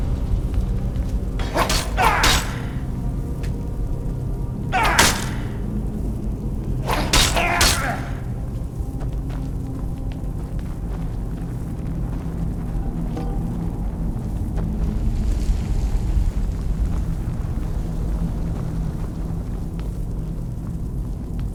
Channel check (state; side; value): identical; both; correlation 1.00